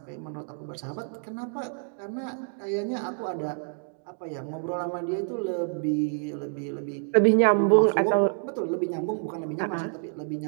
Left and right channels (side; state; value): left; silent; 59 dB below the other